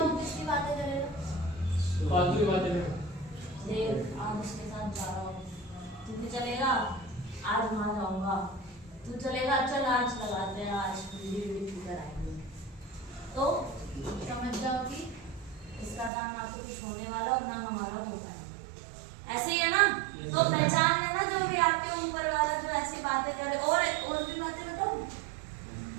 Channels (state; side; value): drops out; left; at 16.1 s